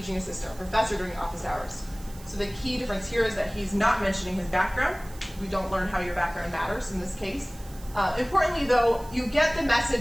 assistant or professor during office hours. So the key difference here is that he's not mentioning his background. We don't learn how your background matters in this case. Importantly, though, you get the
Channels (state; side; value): noise; right; hiss, 21 dB below the sound